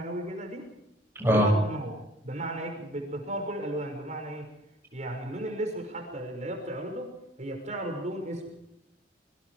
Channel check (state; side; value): normal; both; correlation 0.52